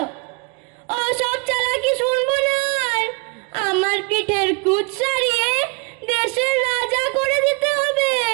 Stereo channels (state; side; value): quieter; left; 32.7 dB